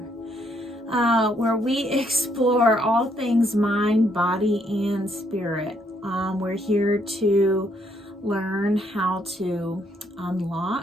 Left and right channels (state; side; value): normal; both; correlation 0.71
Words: where we explore all things mind, body, and spirit. We're here to learn how to